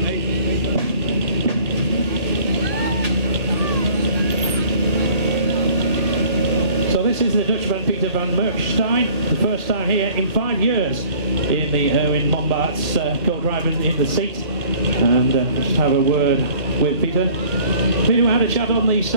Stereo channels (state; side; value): late; left; 1.8 ms